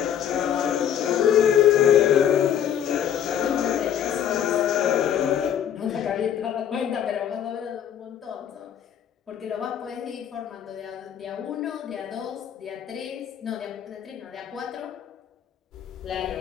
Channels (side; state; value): right; quieter; 9.5 dB